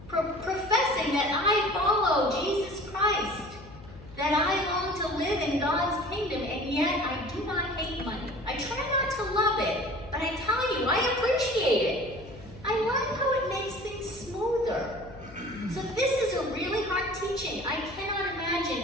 professing that I follow Jesus Christ, that I long to live in God's kingdom, and yet I do not hate money. I try not to love it, but I tell you, I appreciate it. I like how it makes things smoother. So this is a really hard teaching. I cannot imagine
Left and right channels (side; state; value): left; noise; hum, 18 dB below the sound